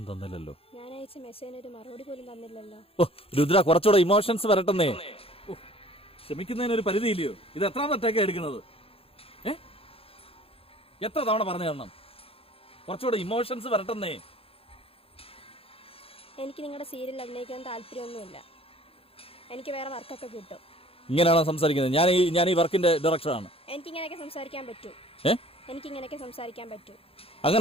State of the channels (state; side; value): late; right; 0.27 ms